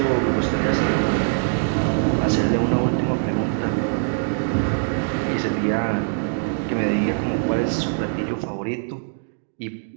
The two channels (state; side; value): silent; left; digital silence